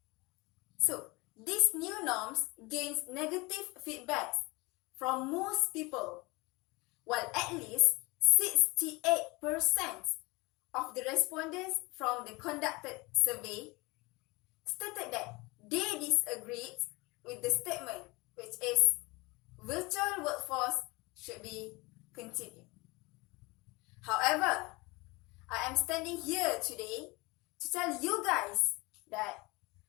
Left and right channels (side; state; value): right; quieter; 24.7 dB